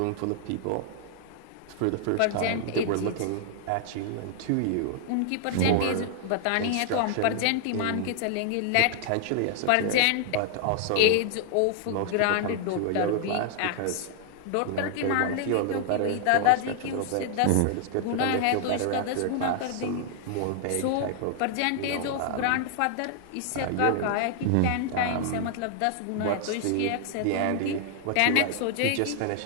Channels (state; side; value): different; both; correlation -0.01